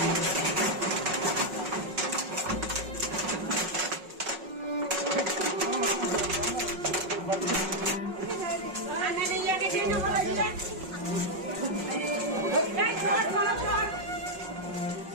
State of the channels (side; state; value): left; late; 5.4 ms